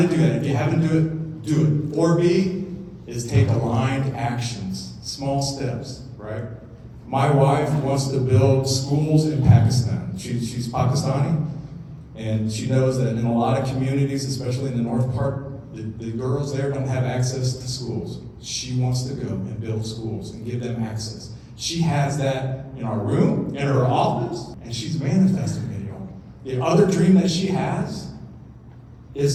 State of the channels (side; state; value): both; identical; correlation 1.00